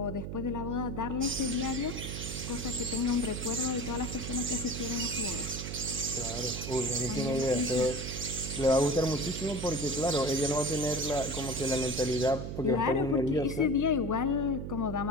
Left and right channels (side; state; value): right; noise; hum, 6 dB below the sound